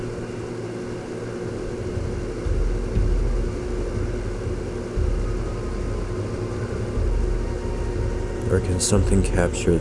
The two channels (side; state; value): both; identical; correlation 1.00